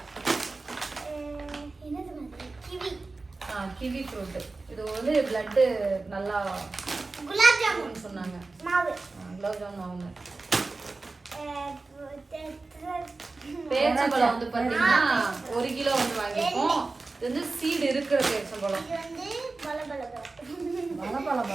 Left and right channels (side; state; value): left; quieter; 3.6 dB